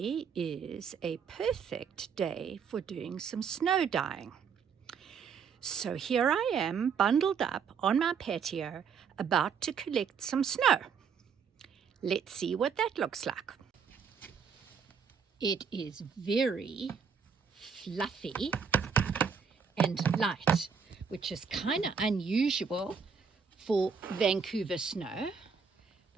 is a perfect day for doing some snow dyeing. So here I am, bundled up on my patio, about to collect some snow. Let's see what that looks like. It is very fluffy and light, which is kind of unusual for Vancouver snow.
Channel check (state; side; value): quieter; left; 6.4 dB